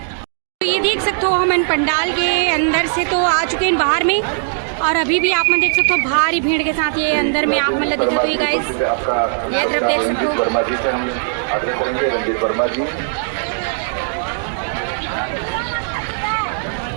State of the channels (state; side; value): silent; left; 67 dB below the other